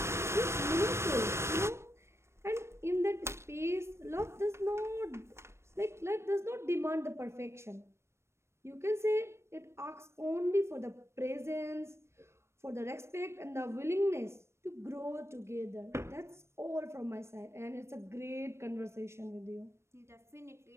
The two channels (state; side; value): late; left; 0.13 ms